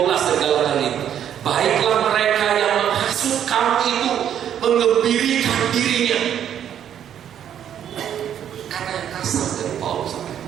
dari Galatia ini, baiklah mereka yang menghasut kamu itu mengembirikan dirinya. Kata yang kasar dari Paulus.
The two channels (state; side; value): quieter; left; 9.7 dB